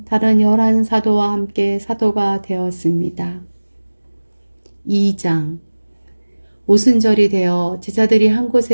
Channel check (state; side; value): inverted; both; correlation -1.00